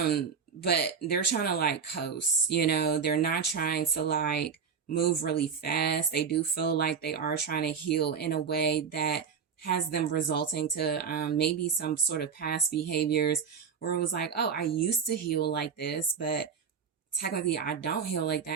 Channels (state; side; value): quieter; left; 6.5 dB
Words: they're trying to like coast, you know, they're not trying to like move really fast. They do feel like they are trying to heal in a way that has them resulting to maybe some sort of past behaviors where it was like, oh, I used to heal like this, but technically I don't heal like